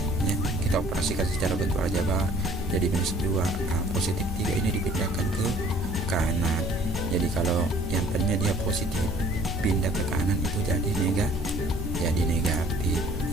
ya, kita operasikan secara bentuk aljabar. Jadi minus 2 positif 3 ini dipindahkan ke kanan. Jadi kalau yang tadinya dia positif pindah ke kanan itu jadi negatif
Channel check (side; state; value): both; normal; correlation 0.54